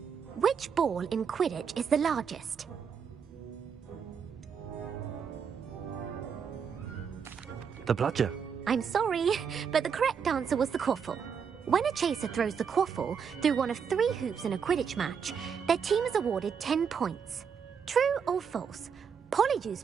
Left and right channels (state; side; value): quieter; left; 6.7 dB